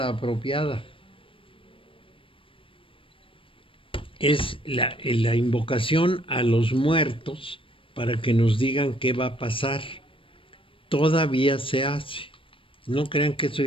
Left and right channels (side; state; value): right; late; 0.25 ms